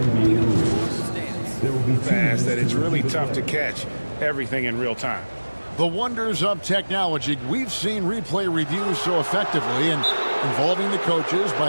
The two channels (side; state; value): both; inverted; correlation -1.00